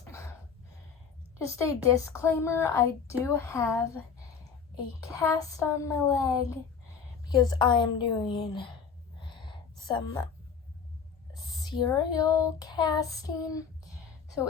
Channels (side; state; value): right; quieter; 6.3 dB